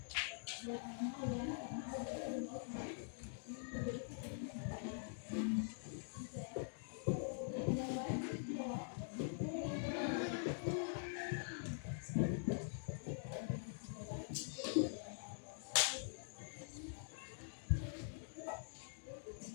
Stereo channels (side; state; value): right; silent; digital silence